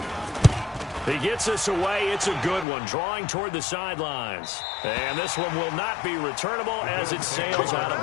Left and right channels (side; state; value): right; drops out; at 2.7 s